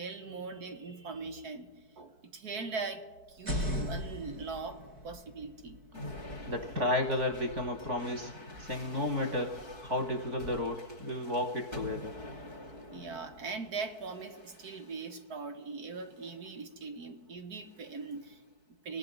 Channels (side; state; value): left; late; 4.6 ms